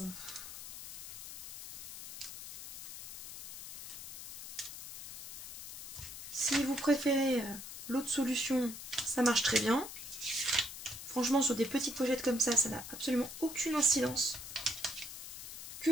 Si vous préférez l'autre solution, ça marche très bien. Franchement, sur des petites pochettes comme ça n'a absolument aucune incidence. Que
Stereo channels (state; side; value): noise; left; hiss, 9 dB below the sound